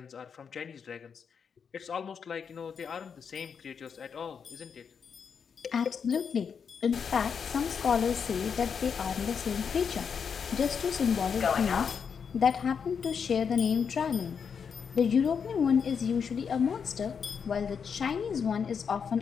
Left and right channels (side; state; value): right; quieter; 6.6 dB